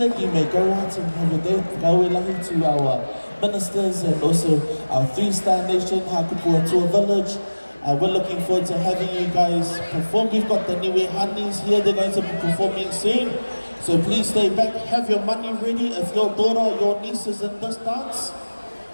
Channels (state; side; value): inverted; both; correlation -1.00